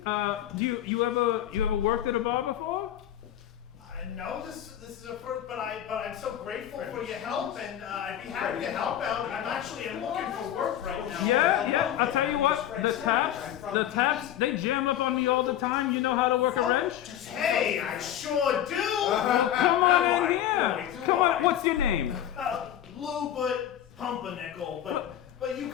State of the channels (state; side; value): quieter; right; 11.3 dB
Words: you ever worked at a bar before? No, this is a first, but I'm so grateful for your help, and I'd be happy to help out. I'm looking for work right now. Yeah. I'll tell you what, the taps, they jam up on me all the time. You know how to work a wrench? Hey, I sure do. Come on in here. Come on. What's your name? Lou, but Pumpernickel, but you